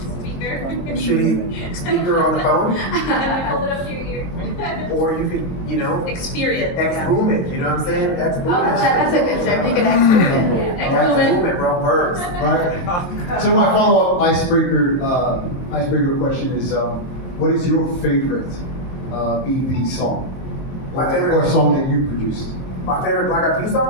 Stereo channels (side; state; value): right; late; 23 ms